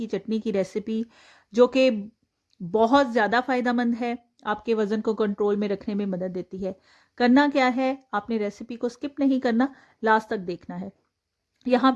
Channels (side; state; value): both; identical; correlation 1.00